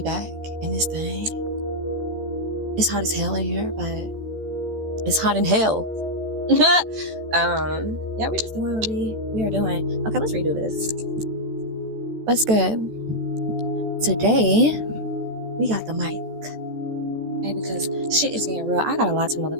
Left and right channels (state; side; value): late; left; 14 ms